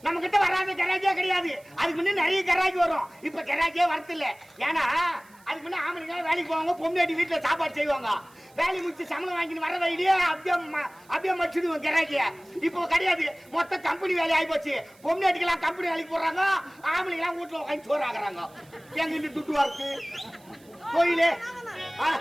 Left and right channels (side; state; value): right; noise; hiss, 28 dB below the sound